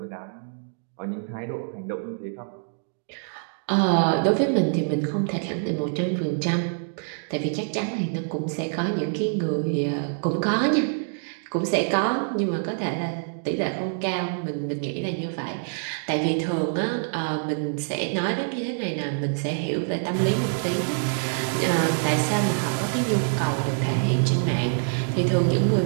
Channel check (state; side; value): silent; left; digital silence